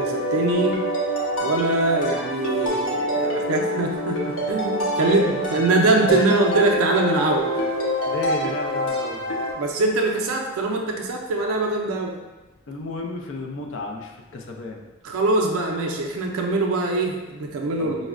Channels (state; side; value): normal; both; correlation 0.03